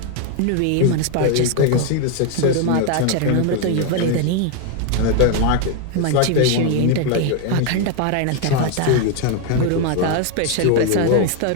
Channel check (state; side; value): different; both; correlation 0.01